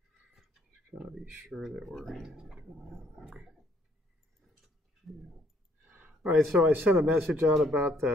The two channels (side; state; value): both; normal; correlation 0.66